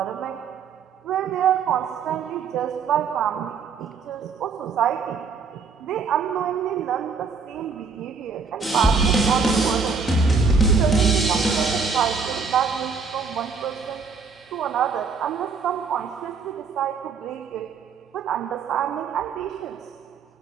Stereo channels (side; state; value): left; quieter; 5.2 dB